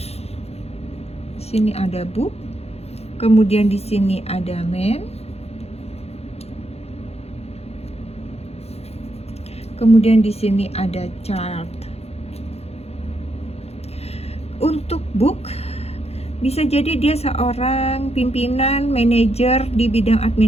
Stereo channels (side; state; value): right; late; 0.30 ms